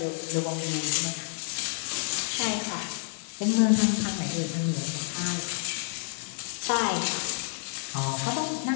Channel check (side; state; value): right; silent; digital silence